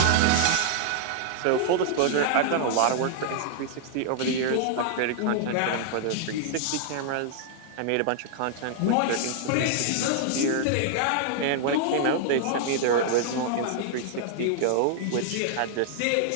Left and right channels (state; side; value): different; both; correlation -0.01